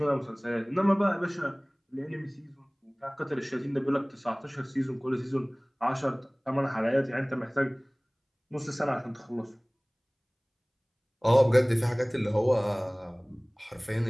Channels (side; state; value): both; identical; correlation 1.00